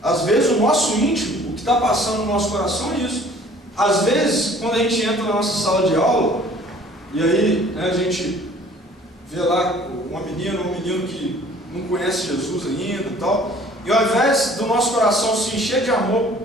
Às vezes o nosso íntimo, o que está passando no nosso coração é isso. Às vezes, quando a gente entra na nossa sala de aula, e aí, né, a gente vê lá uma menina ou um menino que não conhece Jesus ainda e tal, e ao invés do nosso coração se encher de amor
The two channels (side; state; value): both; normal; correlation 0.53